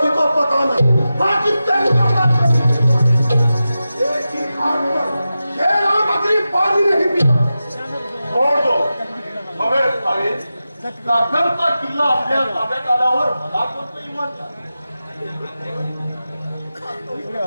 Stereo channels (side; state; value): both; inverted; correlation -0.93